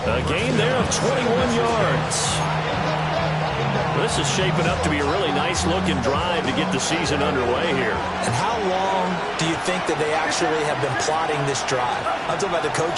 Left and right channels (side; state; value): both; identical; correlation 1.00